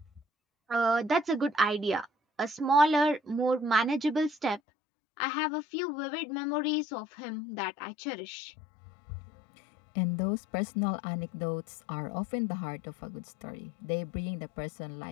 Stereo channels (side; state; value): right; drops out; at 4.6 s